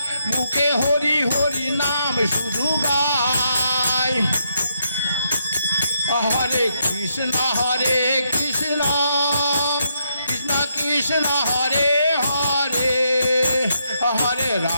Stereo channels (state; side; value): inverted; both; correlation -0.78